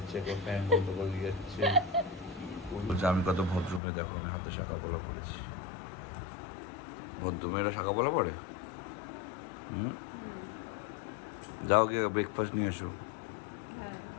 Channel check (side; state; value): right; drops out; at 3.8 s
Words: একবার ফ্যান বন্ধ করে দিয়ে যাচ্ছে। বলছে আমি কত ভদ্র মেয়ে, দেখো আমি হাতে শাঁকা পলা পড়েছি। ভদ্র মেয়েরা শাঁকা পলা পড়ে? যাও গিয়ে ব্রেকফাস্ট নিয়ে এসো। হ্যাঁ,